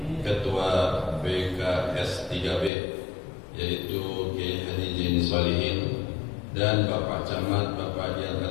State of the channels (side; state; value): right; drops out; at 2.7 s